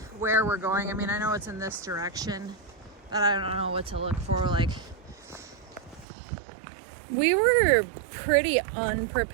where we're going. I mean, I know it's in this direction, but I don't know what to look for. We were pretty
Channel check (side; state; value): left; drops out; at 6.1 s